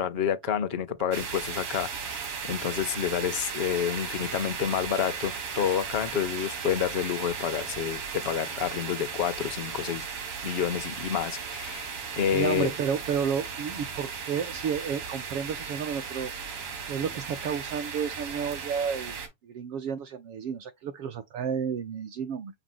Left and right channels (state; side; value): late; left; 7.3 ms